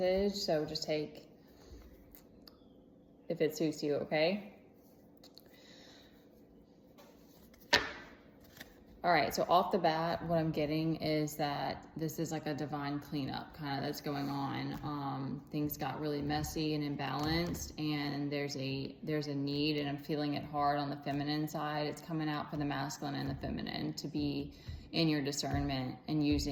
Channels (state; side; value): identical; both; correlation 1.00